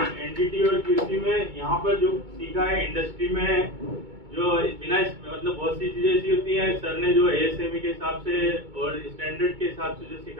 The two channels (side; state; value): left; late; 2.2 ms